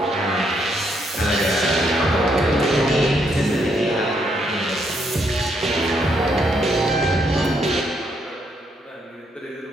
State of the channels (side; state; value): both; normal; correlation 0.74